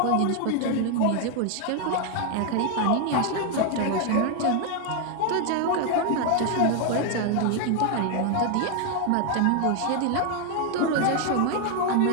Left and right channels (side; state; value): both; different; correlation 0.01